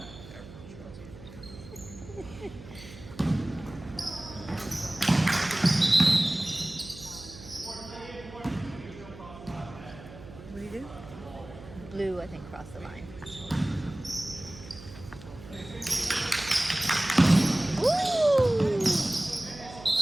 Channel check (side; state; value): right; noise; hum, 16 dB below the sound